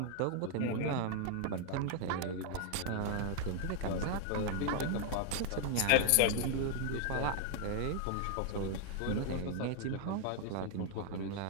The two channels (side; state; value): both; different; correlation 0.00